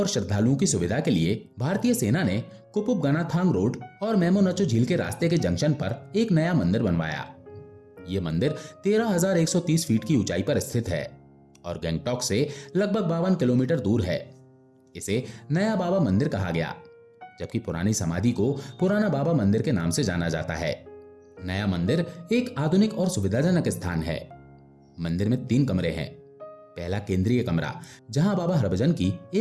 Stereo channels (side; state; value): both; identical; correlation 1.00